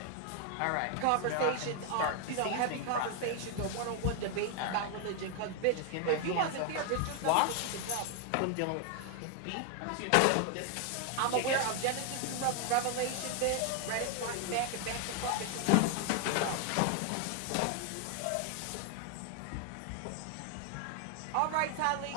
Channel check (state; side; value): different; both; correlation 0.01